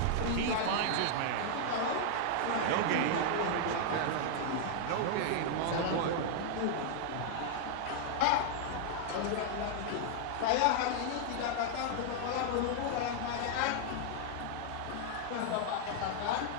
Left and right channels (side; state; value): both; different; correlation -0.01